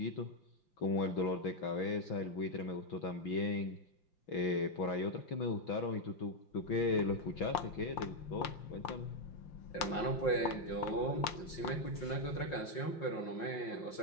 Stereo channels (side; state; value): right; late; 5.7 ms